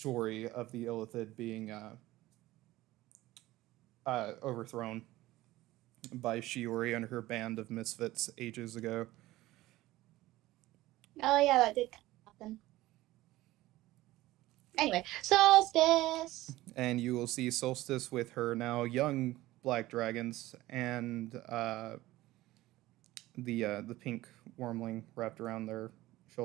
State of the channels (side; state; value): left; quieter; 17.2 dB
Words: of the Illithid being overthrown by Shiori and her band of misfits ages ago. Oh yeah, that did happen. Anyway, solstice. And you will see Solstice with her now young black dragons and the pink wormling wrapped around their